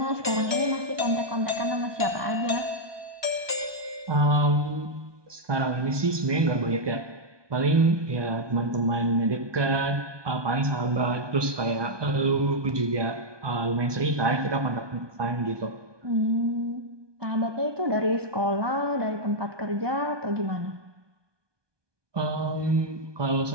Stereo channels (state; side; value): late; left; 1.2 ms